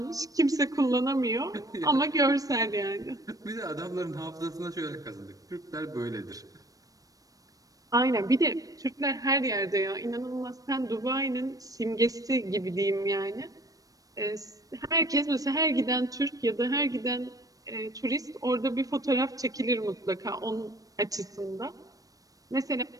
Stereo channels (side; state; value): left; late; 0.17 ms